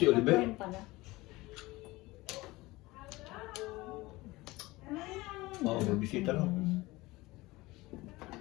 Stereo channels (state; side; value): quieter; right; 20.5 dB